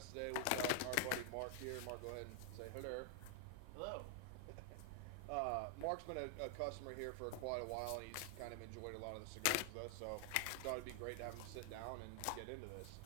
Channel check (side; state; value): both; different; correlation 0.00